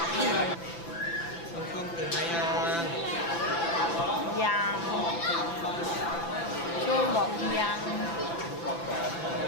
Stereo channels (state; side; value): late; right; 5.9 ms